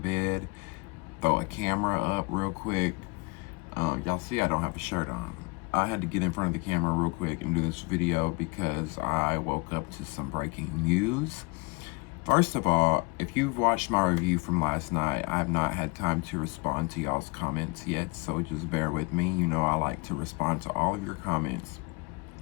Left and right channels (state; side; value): quieter; right; 29.6 dB